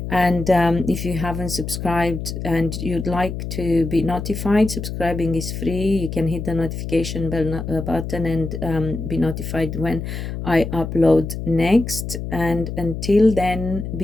And if you haven't subscribed and you'd like to be notified, subscribing is free. You can hit the notification bell button and be notified when I upload next. And until then,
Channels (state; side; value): noise; left; hum, 6 dB below the sound